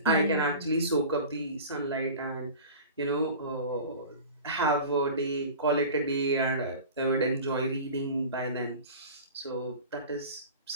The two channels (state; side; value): inverted; both; correlation -0.37